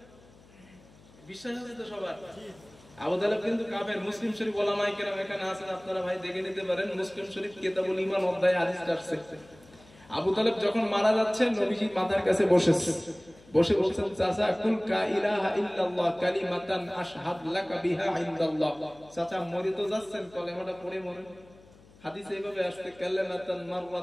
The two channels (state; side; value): noise; left; hum, 25 dB below the sound